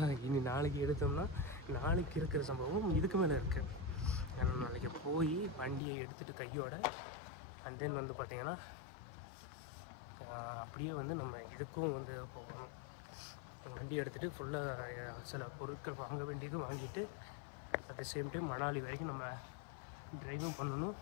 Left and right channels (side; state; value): right; drops out; at 5.8 s